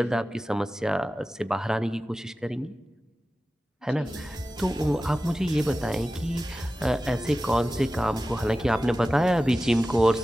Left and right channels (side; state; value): both; normal; correlation 0.95